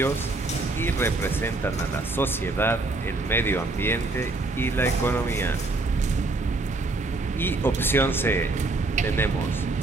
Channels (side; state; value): left; quieter; 3.2 dB